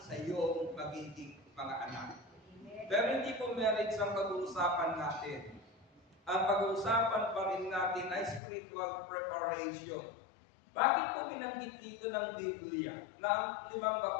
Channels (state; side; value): drops out; right; at 8.4 s